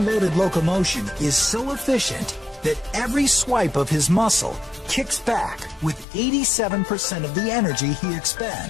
locomotion is so efficient that every swipe of his muscle kicks back with 87% of the energy he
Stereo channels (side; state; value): right; drops out; at 6.1 s